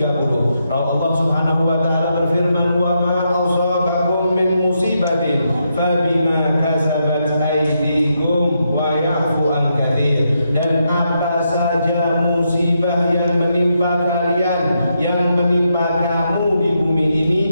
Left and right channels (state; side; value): inverted; both; correlation -0.81